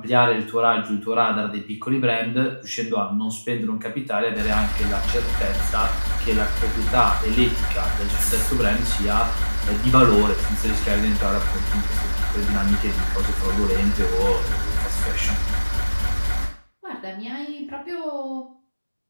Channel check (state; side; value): inverted; both; correlation -1.00